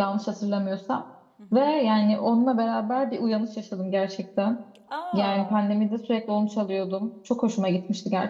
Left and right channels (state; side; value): identical; both; correlation 1.00